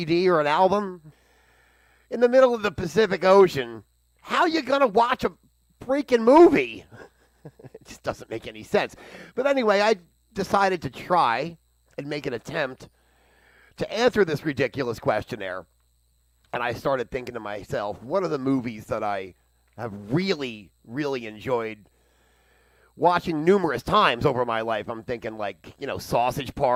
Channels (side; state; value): both; identical; correlation 1.00